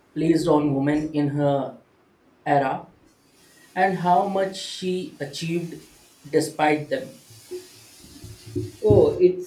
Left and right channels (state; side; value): identical; both; correlation 1.00